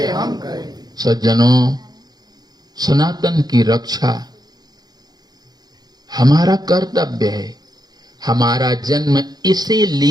हम करेंगे। सज्जनों, सनातन की रक्षा हमारा कर्तव्य है। हमारा जन्म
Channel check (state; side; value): late; left; 0.19 ms